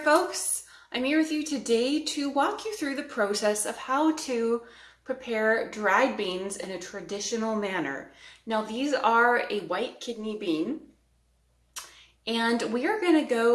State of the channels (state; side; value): identical; both; correlation 1.00